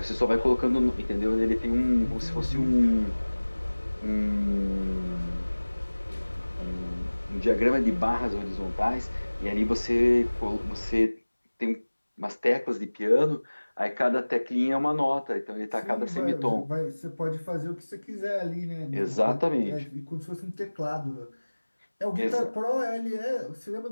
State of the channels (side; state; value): both; inverted; correlation -1.00